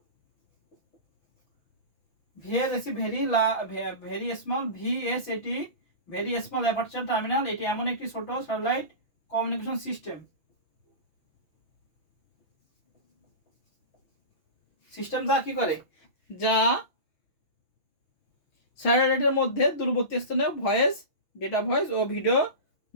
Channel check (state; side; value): late; right; 6.1 ms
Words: VS very small VSAT very small aperture terminal, এটি এমন একটি ছোট স্যাটেলাইট কমিউনিকেশন সিস্টেম যা কি করে, যা স্যাটেলাইটের মধ্যে দূরবর্তী স্থানে ভয়েস, ডেটা ভয়েস ও ভিডিও